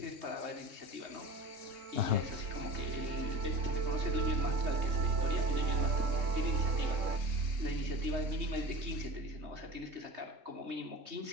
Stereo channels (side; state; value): left; late; 3.2 ms